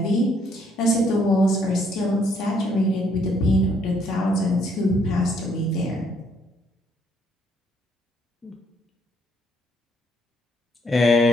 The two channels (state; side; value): normal; both; correlation 0.69